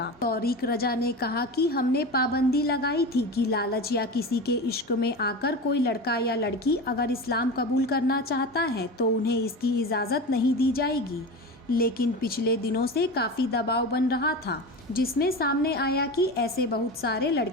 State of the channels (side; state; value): both; normal; correlation 0.27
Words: तौरीक रजा ने कहा कि हमने पाबंदी लगाई थी कि लालच या किसी के इश्क में आकर कोई लड़का या लड़की अगर इस्लाम कबूल करना चाहता है तो उन्हें इसकी इजाज़त नहीं दी जाएगी। लेकिन पिछले दिनों से काफ़ी दबाव बन रहा था, जिसमें सामने आया कि ऐसे बहुत सारे